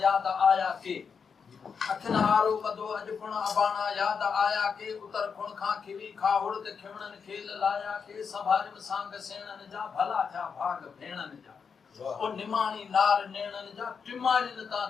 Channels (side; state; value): right; quieter; 6.1 dB